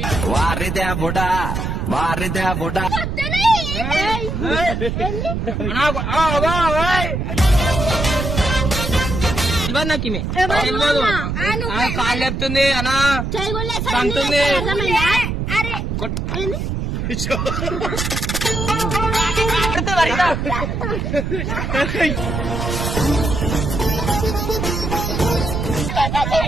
వారిదేవుడా వారిదేవుడా నాకు కాళ్ళు చెప్తుంది అనా సంతుంది.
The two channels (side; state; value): right; noise; rumble, 2 dB below the sound